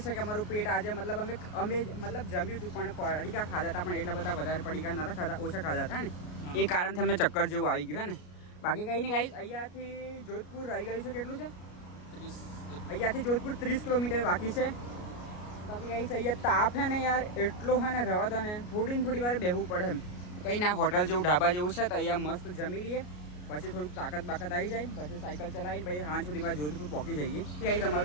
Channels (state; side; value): late; right; 33 ms